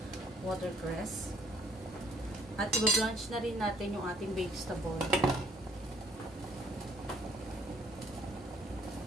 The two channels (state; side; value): normal; both; correlation 0.62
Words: watercress. At iba-blanch na rin natin yung ating vegetable.